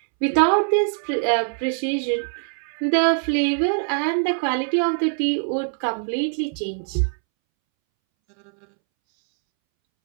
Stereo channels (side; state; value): left; silent; 64 dB below the other